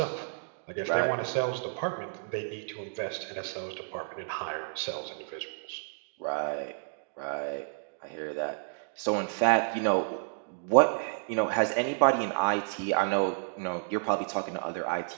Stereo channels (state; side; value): silent; left; digital silence